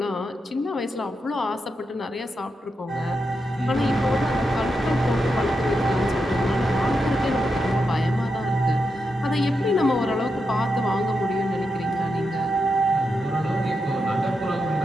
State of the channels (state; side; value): normal; both; correlation 0.86